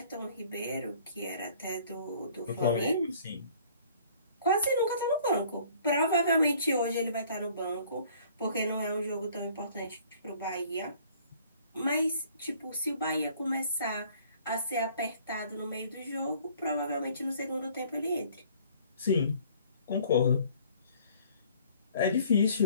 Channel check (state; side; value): inverted; both; correlation -0.56